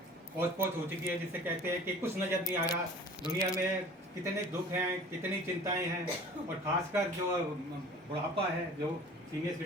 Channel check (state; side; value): normal; both; correlation 0.45